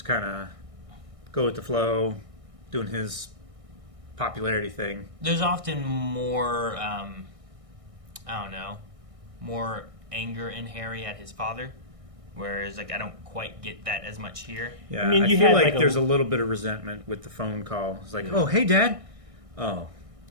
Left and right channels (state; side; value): late; left; 1.6 ms